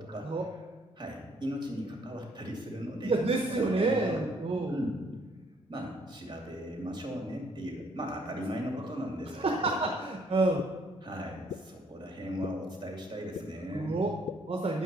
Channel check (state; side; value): normal; both; correlation 0.65